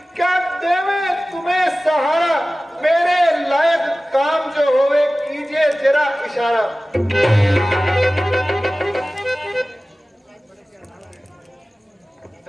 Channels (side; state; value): both; normal; correlation 0.97